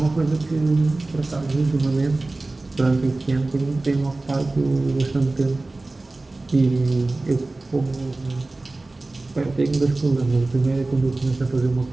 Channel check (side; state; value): left; quieter; 3.1 dB